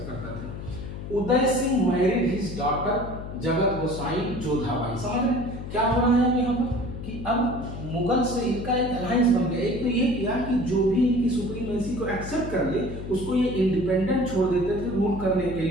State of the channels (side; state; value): left; noise; hum, 9 dB below the sound